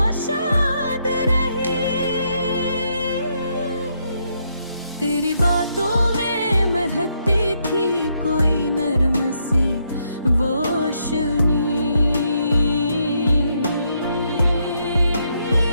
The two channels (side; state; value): both; inverted; correlation -0.76